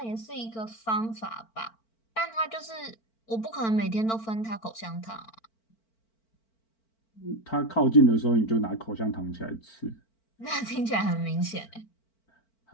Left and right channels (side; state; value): right; late; 4.5 ms